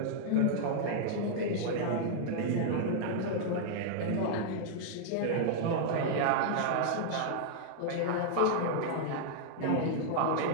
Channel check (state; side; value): different; both; correlation -0.01